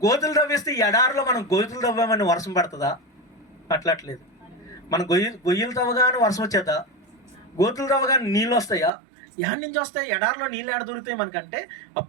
గోతులు తవ్విస్తే ఎడారిలో మనం గోతులు తవ్వామని వర్షం పడుతుందా? అట్లట్లేదు. మనం గొయ్యలు తవ్వగానే వర్షం వచ్చేద్దా? గోతులు తవ్వగానే నీళ్ళు వస్తాయా? ఎక్కడి నుంచి వస్తాయి? ఎడారిలో నీళ్ళు ఎడ దొరుకుతాయి మనకంటే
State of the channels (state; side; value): drops out; left; at 8.9 s